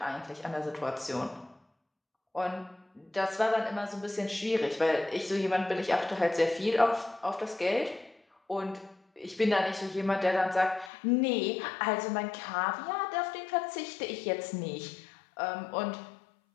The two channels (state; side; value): drops out; right; at 10.9 s